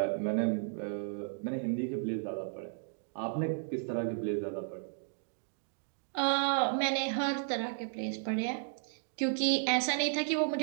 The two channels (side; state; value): left; silent; digital silence